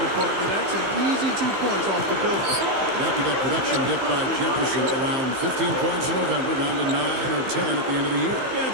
it, partner. That's an easy 2 points off the building. After that production dip by Jefferson, around 15 points in November, down to 9 or 10 at the end of the year. Yeah,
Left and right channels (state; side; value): late; left; 15 ms